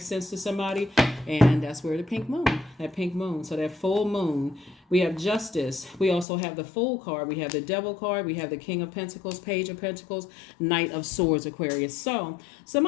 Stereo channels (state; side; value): drops out; right; at 6.2 s